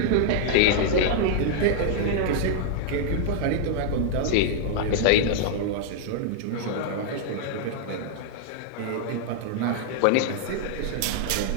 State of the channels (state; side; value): different; both; correlation -0.01